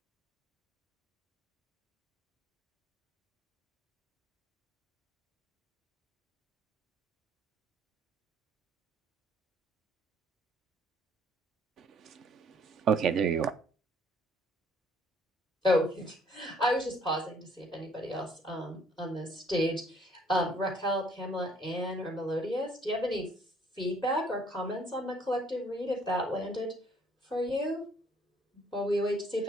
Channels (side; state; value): both; normal; correlation 0.62